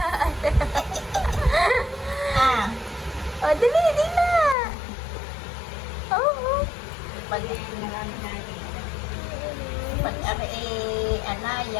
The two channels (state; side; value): drops out; right; at 4.5 s